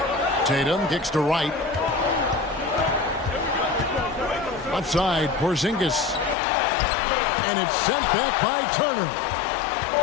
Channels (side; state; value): right; drops out; at 6.4 s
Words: Tatum kicks to Wright. Left side, Porzingis. And it's sent back by Turner.